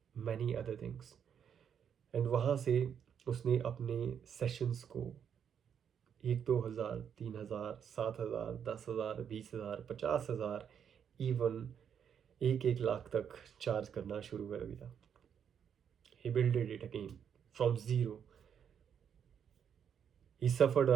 many other things। And वहाँ से उसने अपने sessions को 1-2 हज़ार, 3 हज़ार, 7 हज़ार, 10 हज़ार, 20 हज़ार, 50 हज़ार, इवन 1-1 लाख तक चार्ज करना शुरू कर दिया। He builded it again from zero. He suffered a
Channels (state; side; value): quieter; left; 8.0 dB